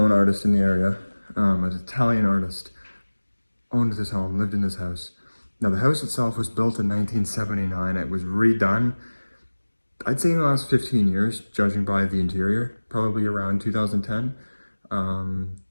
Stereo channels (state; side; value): inverted; both; correlation -1.00